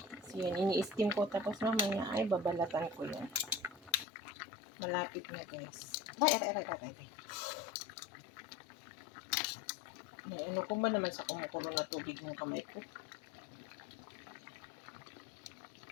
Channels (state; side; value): drops out; right; at 4.0 s